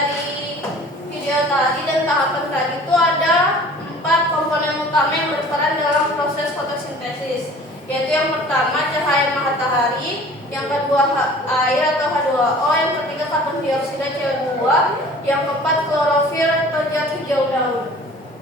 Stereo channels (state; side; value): normal; both; correlation 0.47